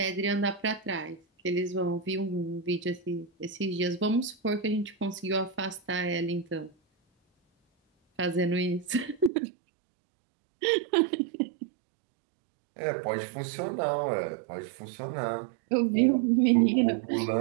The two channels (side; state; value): left; drops out; at 9.3 s